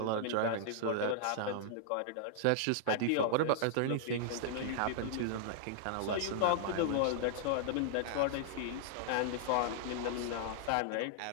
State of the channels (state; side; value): different; both; correlation -0.01